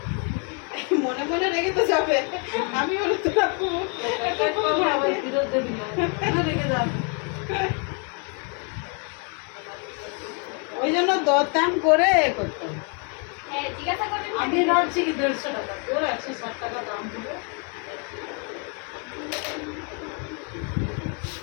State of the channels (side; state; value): right; quieter; 36.8 dB